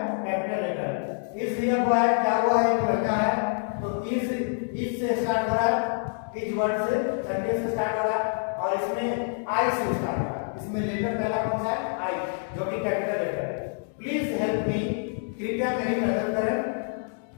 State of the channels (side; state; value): right; silent; 60 dB below the other